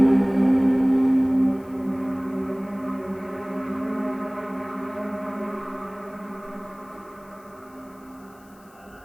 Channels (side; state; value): left; noise; hiss, 29 dB below the sound